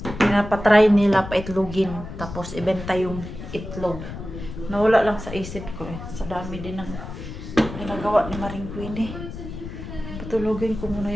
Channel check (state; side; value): noise; left; rumble, 10 dB below the sound